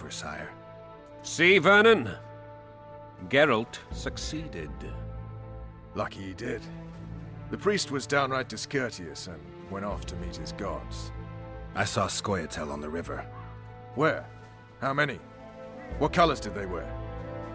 sire. See, Vernon? Geralt succeeded. Lucky he did. The priest was downright discourteous and went off to meet his gods. I saw Scoia'tael on the river. Where? How many? What colors did they wear?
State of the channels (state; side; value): identical; both; correlation 1.00